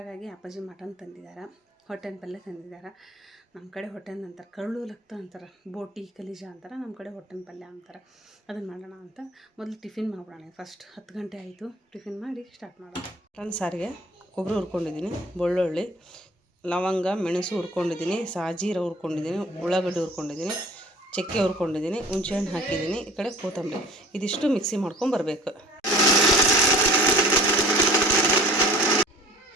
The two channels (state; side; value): normal; both; correlation 0.46